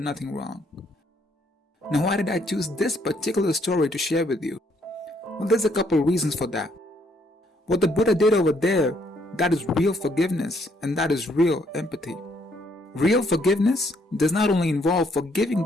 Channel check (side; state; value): both; normal; correlation 0.69